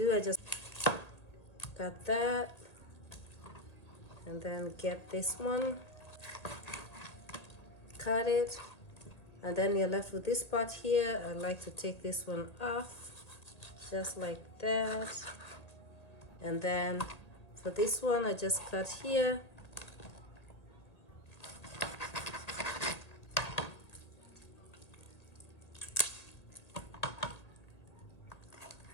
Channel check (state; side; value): late; right; 1.8 ms